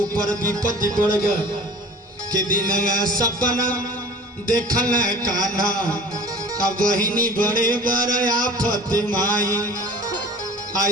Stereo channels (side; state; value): both; normal; correlation 0.44